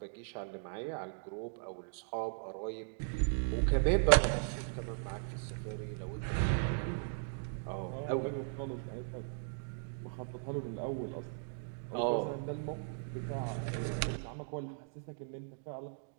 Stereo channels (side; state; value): left; silent; digital silence